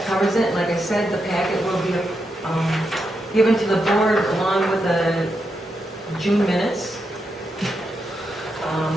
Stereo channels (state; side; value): normal; both; correlation 0.84